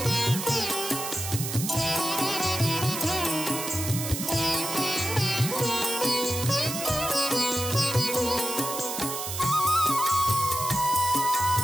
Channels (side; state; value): right; noise; hiss, 5 dB below the sound